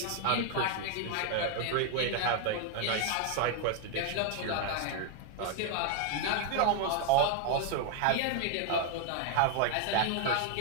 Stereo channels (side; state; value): both; different; correlation 0.00